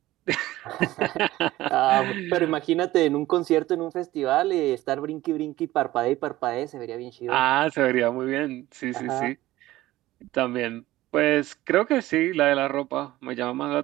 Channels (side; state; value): left; quieter; 16.5 dB